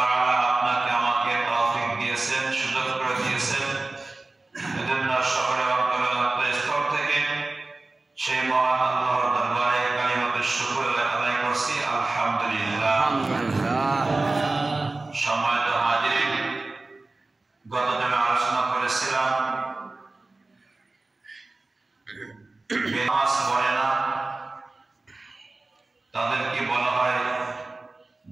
আপনাকে আমাকে তৌফিক দিয়েছেন, সুযোগ করে দিয়েছেন। এজন্য সকলে অন্তরস্থল থেকে সেই মহান আল্লাহর দরবারে কালিমাতুশ শুকর আদায় করছি, আলহামদুলিল্লাহ। সম্মানিত হাজিরিন, গত দিনে আলোচনা করেছিলাম নামাজ পড়ে না তাদেরকে বলা হয়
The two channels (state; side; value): quieter; left; 3.2 dB